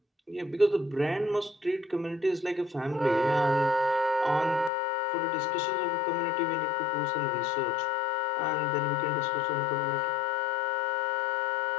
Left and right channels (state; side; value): drops out; right; at 4.7 s